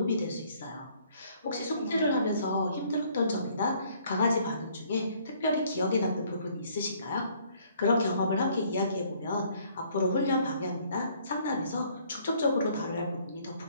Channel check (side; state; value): both; inverted; correlation -0.62